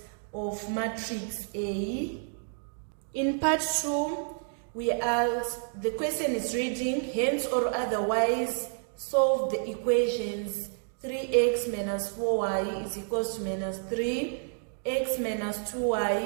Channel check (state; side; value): silent; left; digital silence